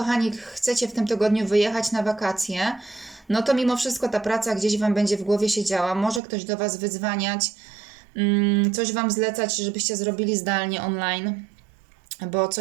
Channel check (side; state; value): left; drops out; at 6.2 s